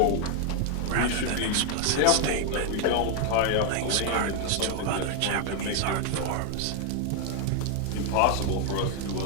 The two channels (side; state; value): both; different; correlation 0.00